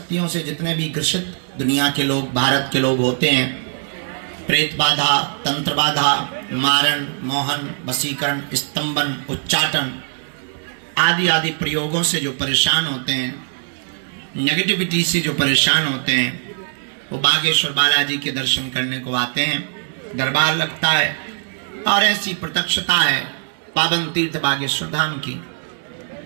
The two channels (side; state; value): left; silent; 63 dB below the other